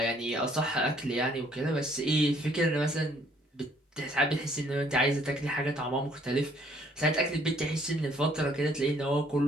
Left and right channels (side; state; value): both; normal; correlation 0.63